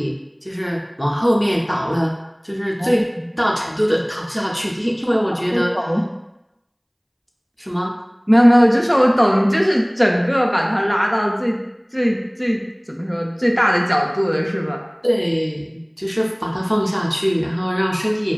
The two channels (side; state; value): both; identical; correlation 1.00